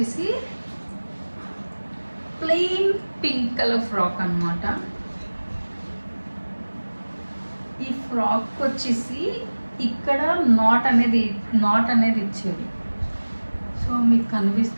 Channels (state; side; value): inverted; both; correlation -1.00